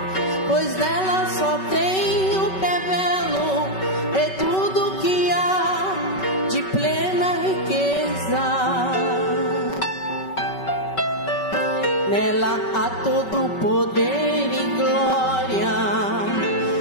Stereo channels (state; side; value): late; right; 5.3 ms